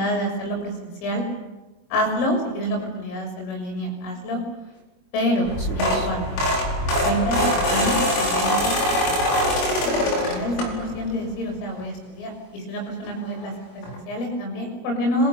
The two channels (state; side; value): late; right; 21 ms